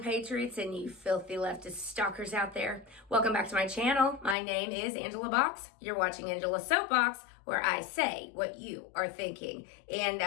and you filthy leftist stalkers out there. Welcome back to my channel. My name is Angela Box. You're watching Angela's Soapbox, where I say what you are thinking. And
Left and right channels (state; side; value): drops out; right; at 4.4 s